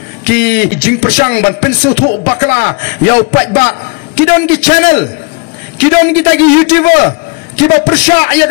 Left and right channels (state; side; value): quieter; right; 30.7 dB